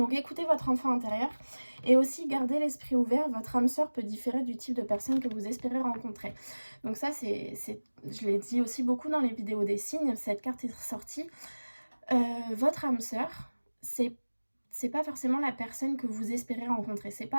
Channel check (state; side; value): inverted; both; correlation -1.00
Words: écoutez votre enfant intérieur et aussi gardez l'esprit ouvert, votre âme sœur peut différer du type de personne que vous espérez rencontrer. Donc ça je l'ai dit aussi beaucoup dans les vidéos des signes, cette carte est ressortie. Votre âme sœur, c'est pas forcément la personne que vous espérez rencontrer, c'est